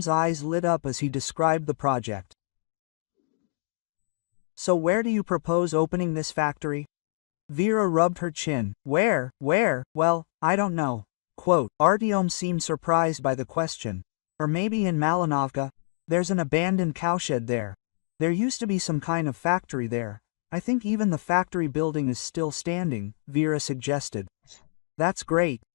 eyes lit up as he described the project. So where do you propose opening this factory? Vera rubbed her chin. Where? Well, I don't know. Quote, Artyom seemed surprised by the question. Or maybe in Malinovka. There's an abandoned cowshed there. There used to be some kind of factory there. I think even the factory building is still standing, Vera suggested. That's great.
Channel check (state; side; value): silent; right; digital silence